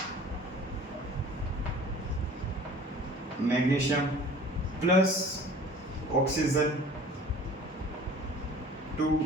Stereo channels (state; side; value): normal; both; correlation 0.46